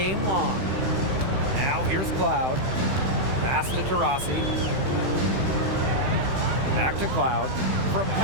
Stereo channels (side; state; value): left; late; 15 ms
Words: long. Now here's Cloud. Pass to Taurasi. Back to Cloud. From